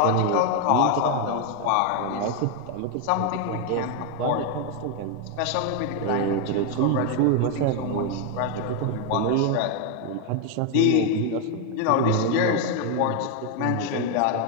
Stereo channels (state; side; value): different; both; correlation 0.01